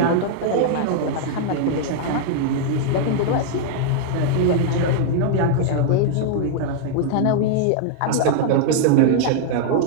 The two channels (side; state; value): both; different; correlation -0.01